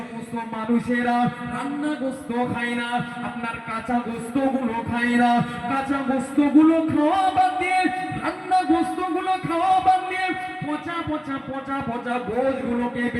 মানুষেরা রান্না গোস্ত খায় না, আপনার কাঁচা গোস্ত গুলো খায় না, কাঁচা গোস্ত গুলো খাওয়া বাদ দিয়ে, রান্না গোস্ত গুলো খাওয়া বাদ দিয়ে পচা পচা পচা পচা গোশ গুলোকে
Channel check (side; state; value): both; identical; correlation 1.00